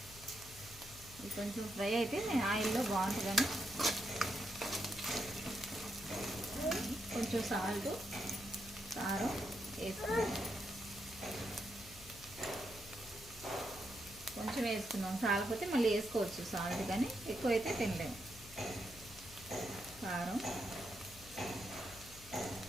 ఇది కొంచెం ఫ్రై అయితే నేను ఆయిల్లో బాగుంటుందని కొంచెం సాల్ట్, కారం వేసుకున్నాం. కొంచెం వేసుకున్నాం, చాలకపోతే మళ్ళీ వేసుకోవచ్చు సాల్ట్, కానీ ఎక్కువైతే తినలేము. కారం,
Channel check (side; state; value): left; noise; hum, 18 dB below the sound